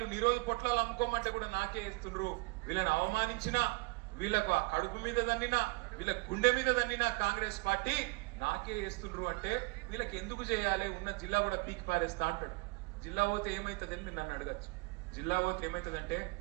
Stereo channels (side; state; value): left; quieter; 26.7 dB